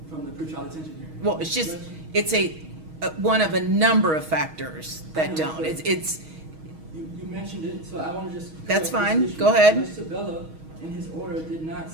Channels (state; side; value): late; left; 6.3 ms